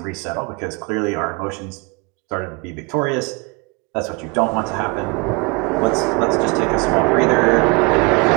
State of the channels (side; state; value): left; quieter; 29.4 dB